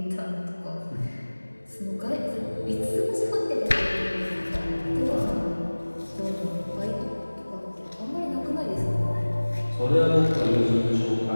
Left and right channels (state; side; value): inverted; both; correlation -1.00